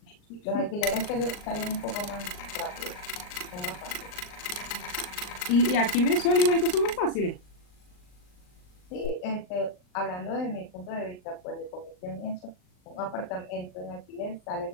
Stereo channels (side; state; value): right; late; 39 ms